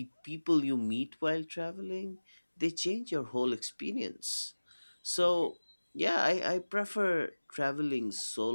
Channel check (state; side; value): inverted; both; correlation -1.00